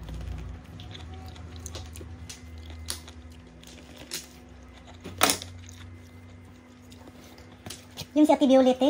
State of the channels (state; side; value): identical; both; correlation 1.00